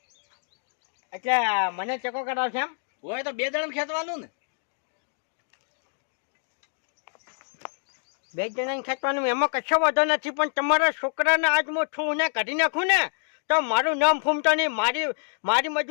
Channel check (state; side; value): silent; right; digital silence